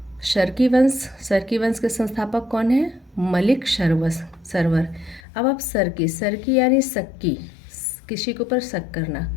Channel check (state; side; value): drops out; right; at 5.2 s